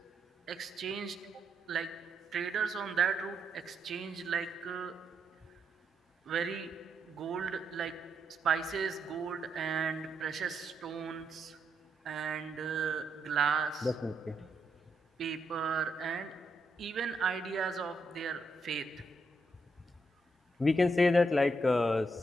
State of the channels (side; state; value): both; normal; correlation 0.80